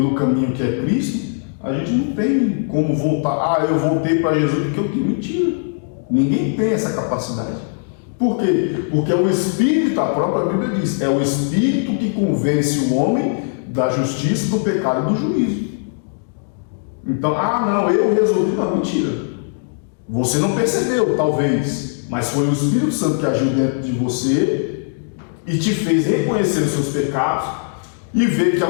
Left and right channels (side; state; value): right; silent; digital silence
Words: caminho que é Cristo, a gente não tem como voltar. Eu voltei para Jesus porque eu tenho. Mentira. Ninguém tem essa capacidade. Por quê? Porque é o Espírito, a própria Bíblia diz, é o Espírito que convence o homem da justiça, do pecado e do juízo. Então, não, eu resolvi. Não, mentira. Você não percebeu, talvez, mas foi o Espírito Santo que agiu dentro de você e te fez reconhecer os seus pecados e ver que a